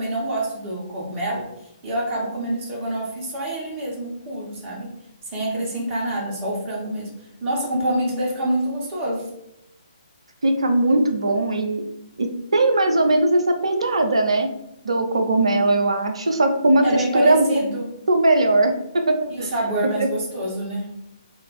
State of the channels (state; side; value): inverted; both; correlation -0.78